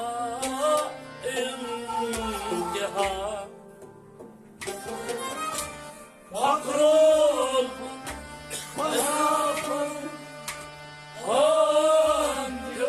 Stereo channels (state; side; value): identical; both; correlation 1.00